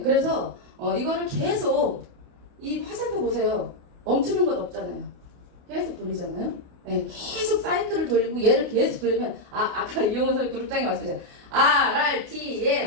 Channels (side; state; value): left; late; 28 ms